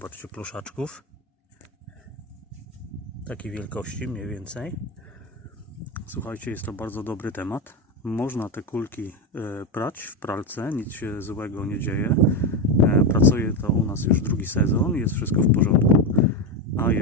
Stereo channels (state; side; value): normal; both; correlation 0.13